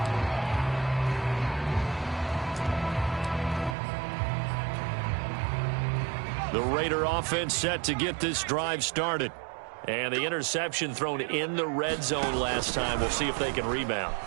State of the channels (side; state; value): left; drops out; at 3.8 s